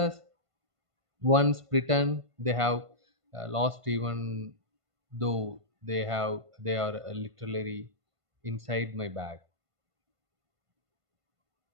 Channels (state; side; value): late; left; 1.5 ms